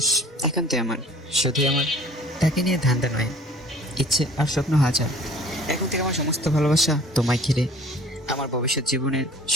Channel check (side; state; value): both; normal; correlation 0.49